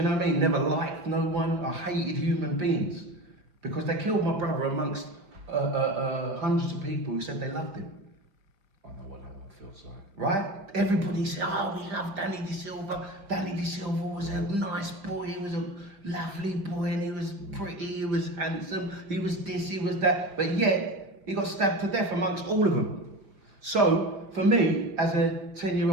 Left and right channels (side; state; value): left; late; 5.1 ms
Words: know what I mean? Never liked no one. I hated human beings because they killed my brother amongst hundreds of people who said they loved him. I know what that feels like. Right? Everybody said, oh, we love Danny De Silva. Danny De Silva was a nice boy. He was a lovely boy, and he was pretty. He was handsome. He was this. He was that. But yet he got stabbed to death amongst all of them. So, for me, as a